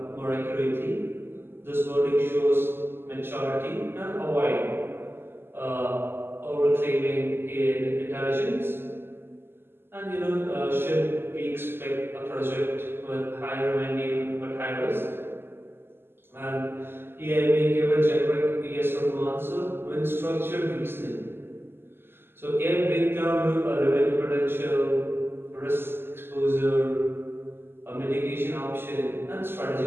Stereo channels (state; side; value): late; left; 0.11 ms